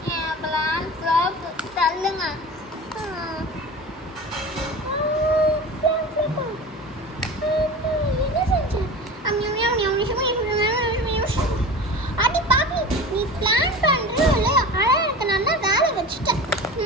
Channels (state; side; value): normal; both; correlation 0.34